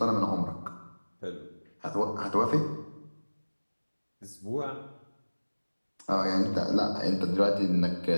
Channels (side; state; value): both; inverted; correlation -1.00